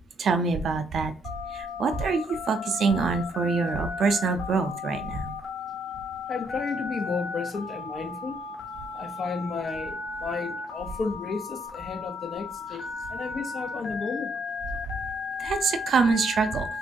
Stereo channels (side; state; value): both; normal; correlation 0.71